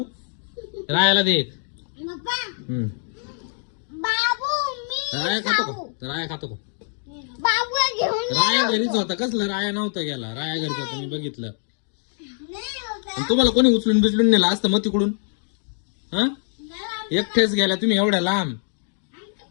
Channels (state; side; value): silent; right; 59 dB below the other